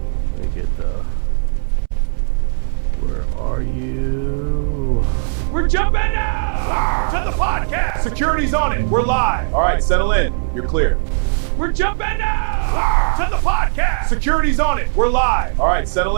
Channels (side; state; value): left; silent; 67 dB below the other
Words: Let me get the... Where are you? We're jumping now to the podcast. Security's on it. We're live. All right, settle in. You're clear. We're jumping now to the podcast. Security's on it. We're live. All right, settle